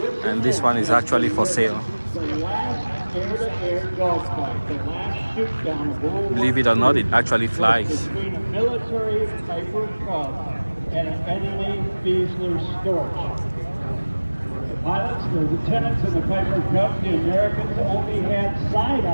And this one is actually for sale. Believe it or not, it actually flies. Between a military Piper Cub and an enemy Fiesler Storch. The pilots, the lieutenants in the Piper Cub, the Americans only had side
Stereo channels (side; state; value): both; inverted; correlation -1.00